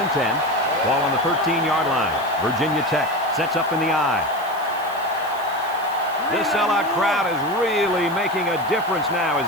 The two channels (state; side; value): noise; right; hiss, 20 dB below the sound